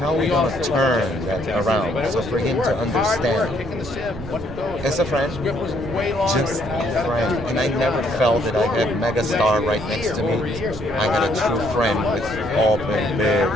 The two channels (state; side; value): noise; right; rumble, 13 dB below the sound